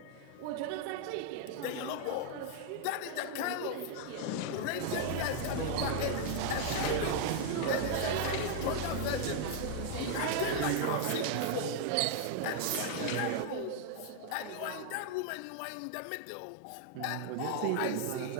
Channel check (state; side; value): different; both; correlation 0.00